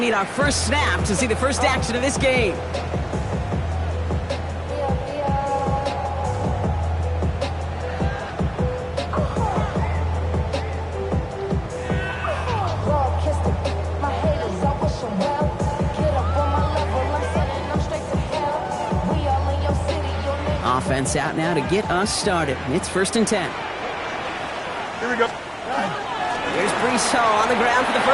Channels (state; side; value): identical; both; correlation 1.00